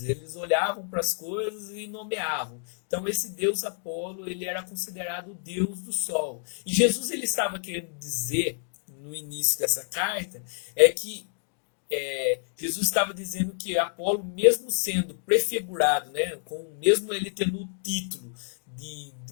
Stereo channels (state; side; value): silent; right; 59 dB below the other